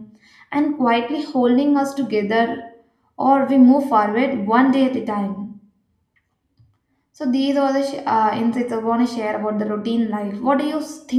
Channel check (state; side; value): identical; both; correlation 1.00